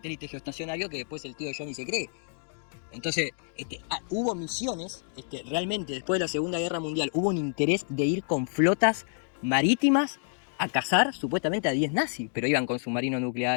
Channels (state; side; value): silent; right; digital silence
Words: geoestacionarios que después el tío Johnny se cree. Entonces, hubo misiones, realmente después de la Segunda Guerra Mundial, hubo un interés de ir con flotas marítimas a cazar supuestamente a 10 nazis, pero iban con submarinos